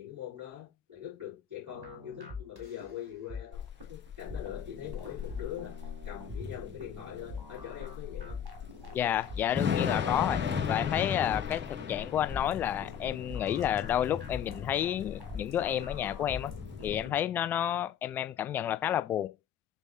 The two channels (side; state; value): right; quieter; 9.3 dB